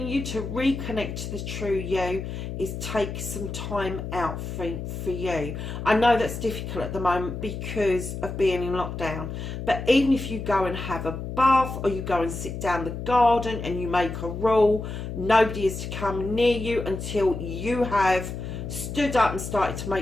you to reconnect to the true you is take some time out for you. I know that's difficult at the moment because of being in lockdown, but even if you go and have a bath or you go and sit down the garden and you make a rule, nobody is to come near you until you have stood up and started to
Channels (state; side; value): noise; left; hum, 6 dB below the sound